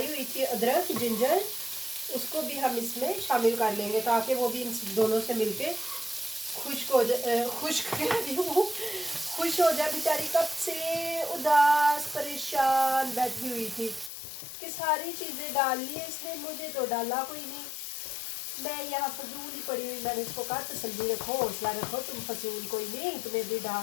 हुई थी, अदरक जिंजर, उसको भी हम इसमें शामिल कर लेंगे ताकि वो भी इन दोनों से मिलके खुश्क हो जाए। खुश्क वो खुश हो जाए। बेचारी कब से उदास परेशान बैठी हुई थी कि सारी चीज़ें डाल ली है इसने, मुझे तो डाला कोई नहीं, मैं यहाँ फजूल ही पड़ी हुई। मैंने इसको कहा तसल्ली रखो, हौसला रखो, तुम फजूल कोई नहीं, तुम्हें भी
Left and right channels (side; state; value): right; drops out; at 14.1 s